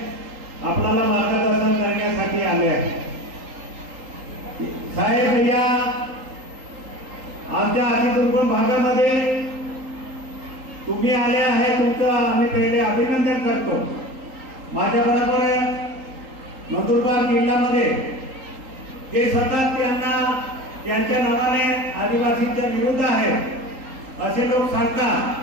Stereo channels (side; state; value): left; late; 3.8 ms